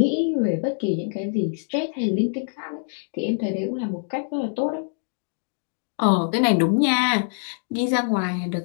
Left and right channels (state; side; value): silent; right; digital silence